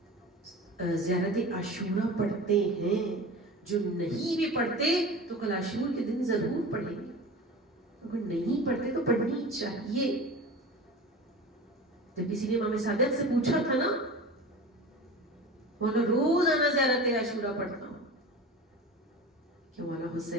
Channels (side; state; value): both; normal; correlation 0.33